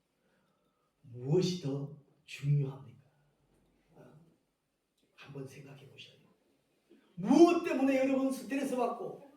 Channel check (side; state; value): both; identical; correlation 1.00